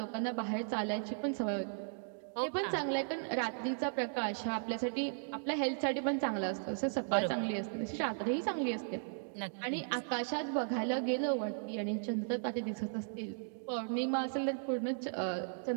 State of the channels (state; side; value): silent; left; digital silence